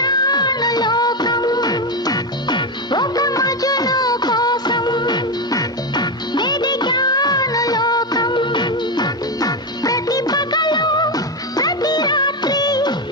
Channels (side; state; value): both; normal; correlation 0.11